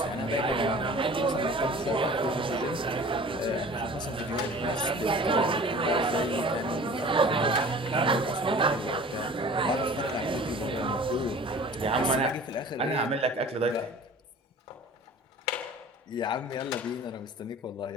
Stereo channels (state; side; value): normal; both; correlation 0.44